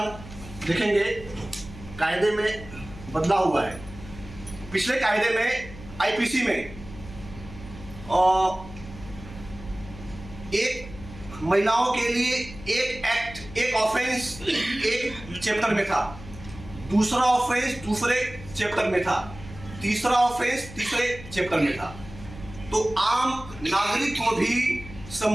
देखेंगे कायदे में बदलाव हुआ है। पिछले कायदे में आईपीसी में एक महिलाओं के लिए एक एक्ट, एक ऑफेंस एक चैप्टर में था, दूसरा ऑफेंस दूसरे चैप्टर में था, तीसरा ऑफेंस तीसरे चैप्टर में था। तो आम नागरिक को भी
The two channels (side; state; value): left; noise; hum, 15 dB below the sound